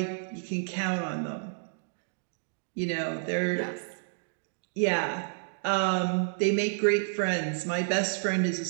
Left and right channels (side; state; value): left; silent; digital silence